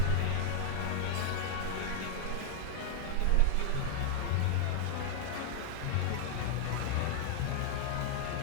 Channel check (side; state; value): both; different; correlation 0.00